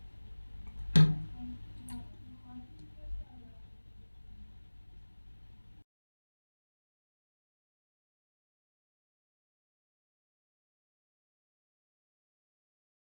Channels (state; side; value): inverted; both; correlation -1.00